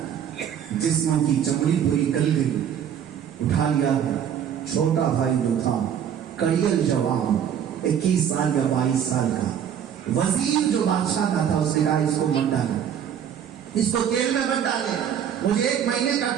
جسموں کی چمڑی پوری گل گئی۔ اٹھا لیا ہے چھوٹا بھائی جو تھا، کڑیل جوان، 21 سال یا 22 سال کا وزیر جو بادشاہ کا تھا، اس نے کہا اس کو مت ڈالے، اس کو تیل میں مت ڈالے، مجھے 1 مہینے کا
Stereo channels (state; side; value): quieter; left; 8.9 dB